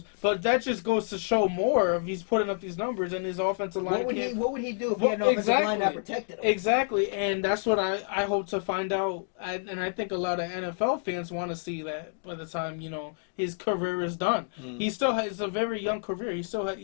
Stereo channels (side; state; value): right; silent; digital silence